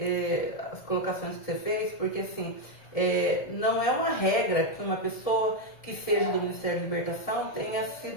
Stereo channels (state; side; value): late; right; 1.7 ms